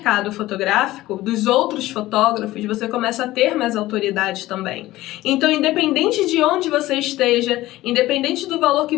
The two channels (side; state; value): right; quieter; 16.8 dB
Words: fotográfico dos outros fotógrafos, você começa a ter mais autoridade também. Então, independente de onde você esteja, independente do valor que